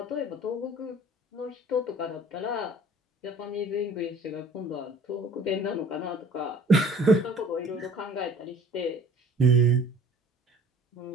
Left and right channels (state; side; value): normal; both; correlation 0.50